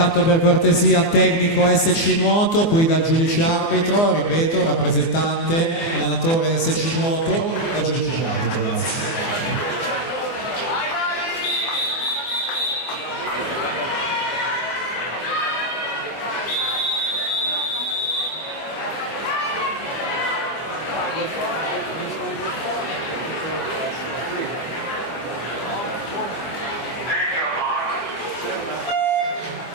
per cortesia tecnico SC Nuoto, qui dal giudice arbitro, ripeto, rappresentante, allenatore SC Nuoto, dal giudice arbitro, grazie.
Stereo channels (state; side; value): late; right; 24 ms